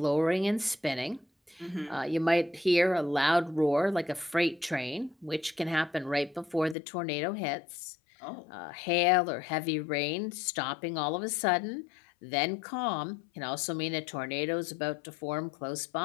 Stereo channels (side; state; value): right; drops out; at 6.8 s